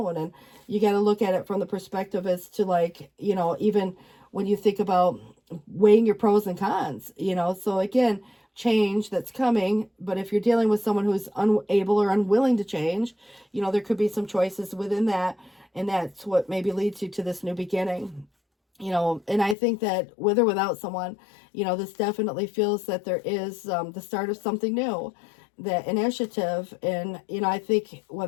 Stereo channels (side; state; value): right; drops out; at 19.6 s